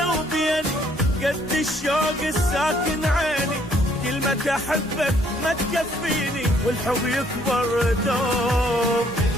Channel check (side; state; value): both; normal; correlation 0.65